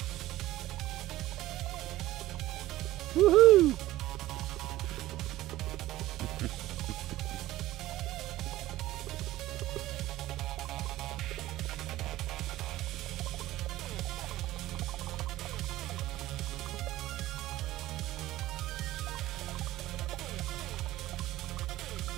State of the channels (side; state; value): left; quieter; 15.9 dB